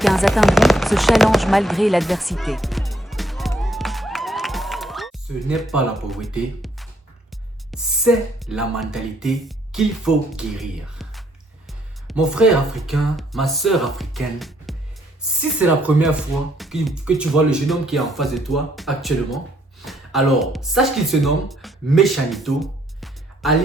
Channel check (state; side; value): normal; both; correlation 0.68